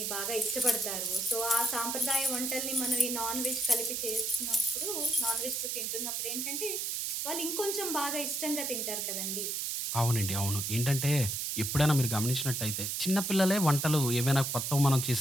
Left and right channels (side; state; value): right; noise; hiss, 1 dB below the sound